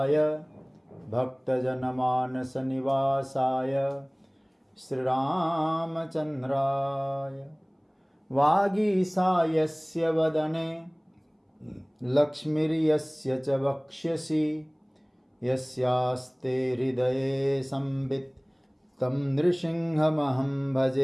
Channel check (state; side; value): identical; both; correlation 1.00